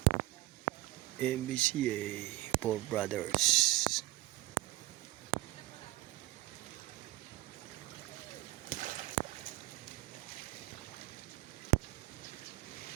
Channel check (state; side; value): quieter; left; 18.6 dB